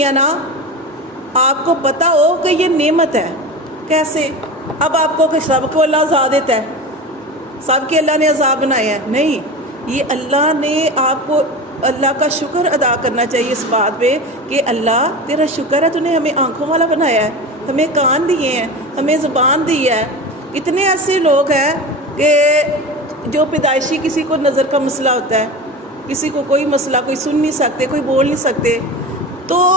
ہیں نا، آپ کو پتہ ہو کہ یہ نعمت ہے۔ کیسے؟ اب آپ کو کہ سب کو اللہ عذاب دیتا ہے، سب کے اللہ نے عذاب بنائے ہیں؟ نہیں، یہ اللہ نے آپ کو، اللہ کا شکر ادا کرنا چاہیے اس بات پہ کہ اللہ تیرا شکر ہے، تو نے ہمیں آنکھوں والا بنایا ہے، ہمیں کان دیے ہیں، ہمیں زبان دی ہے۔ اتنے ایسے لوگ ہیں کہ جو پیدائشی کسی کو نظر کا مسئلہ ہوتا ہے، کسی کو کوئی مسئلہ، کوئی سن نہیں سکتے، کوئی بول نہیں سکتے، تو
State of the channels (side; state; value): both; normal; correlation 0.28